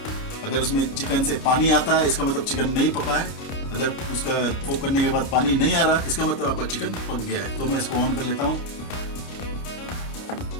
अगर उसमें चिकन से पानी आता है इसका मतलब चिकन नहीं पका है, अगर उसका फोक करने के बाद पानी नहीं आ रहा इसका मतलब आपका चिकन पक गया है। तो मैं इसको ऑन कर लेता हूँ।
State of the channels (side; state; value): right; late; 30 ms